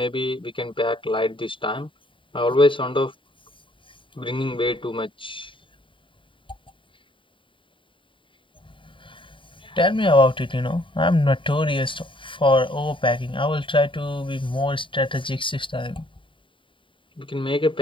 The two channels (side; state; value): right; late; 0.25 ms